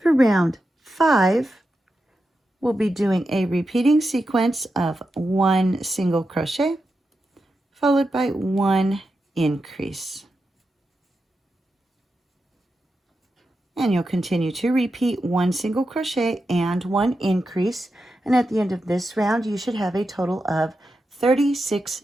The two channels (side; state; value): both; normal; correlation 0.89